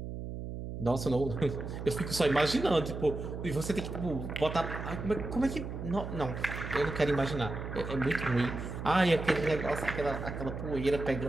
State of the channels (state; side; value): noise; right; hum, 7 dB below the sound